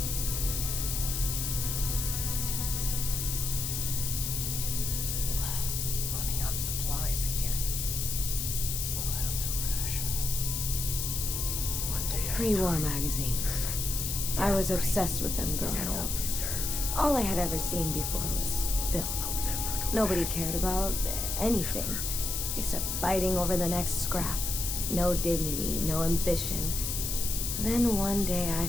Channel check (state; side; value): noise; left; hiss, 2 dB below the sound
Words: Running out of supplies again. We'll have to ration. One day at a Pre-war time. magazines. I was obsessed with them Is that growing all up. we deserve? All I had ever seen before was filth. I'll never go Nobody back. cared about anything Never. except fighting over the next scrap. No dignity, no ambition. Then one day I